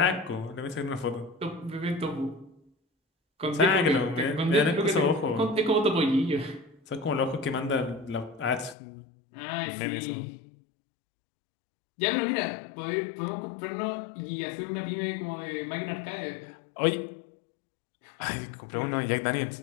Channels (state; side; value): drops out; right; at 8.8 s